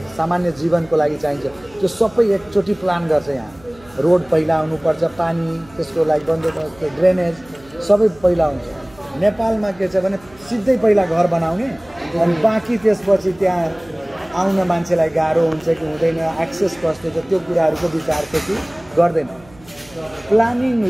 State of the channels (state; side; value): noise; right; hum, 25 dB below the sound